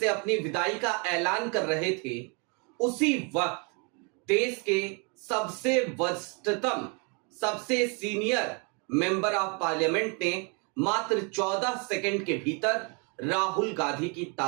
अपनी विदाई का ऐलान कर रहे थे, उसी वक्त देश के सबसे वरिष्ठतम, सबसे सीनियर मेंबर ऑफ पार्लियामेंट ने मात्र 14 सेकंड के भीतर राहुल गांधी की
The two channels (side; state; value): left; quieter; 34.2 dB